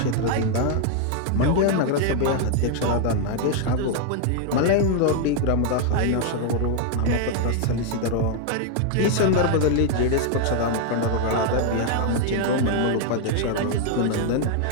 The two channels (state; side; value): different; both; correlation 0.00